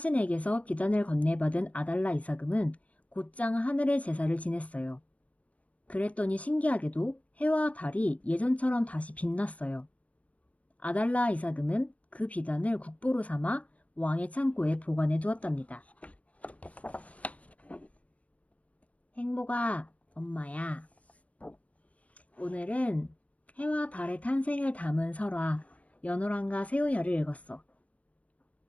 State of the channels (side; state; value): right; late; 0.067 ms